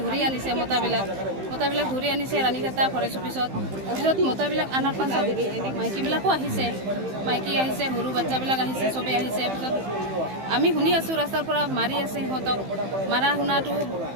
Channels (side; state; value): left; late; 15 ms